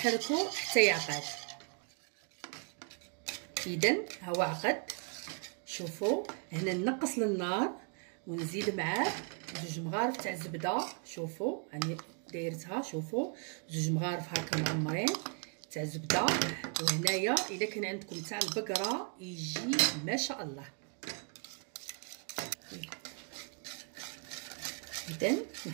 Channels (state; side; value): quieter; left; 39.6 dB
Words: حتى يعقد. اذا هو عقد. شوفوا هنا نقص للنار ونزيد معاه 2 مغارف تاع الزبده. شوفوا راني دايرتها، شوفوا 2 مغارف هكا معمرين تاع الزبده. وهنايا الا كان عندكم تاع البقره يجي ما شاء الله. اذا